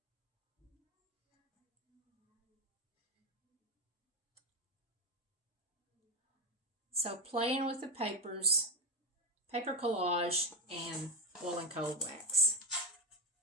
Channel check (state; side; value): normal; both; correlation 0.13